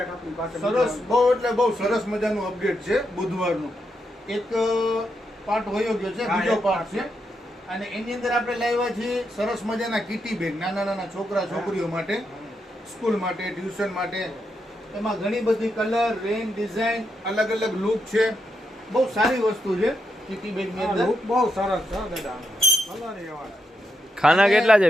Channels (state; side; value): normal; both; correlation 0.83